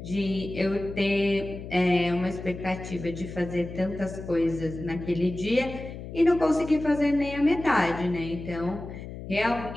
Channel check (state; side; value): noise; left; hum, 11 dB below the sound